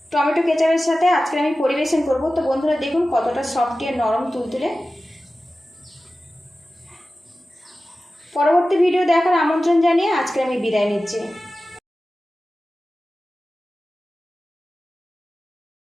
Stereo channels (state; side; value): normal; both; correlation 0.95